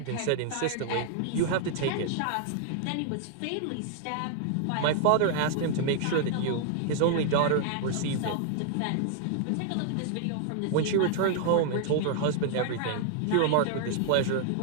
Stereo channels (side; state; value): both; different; correlation 0.00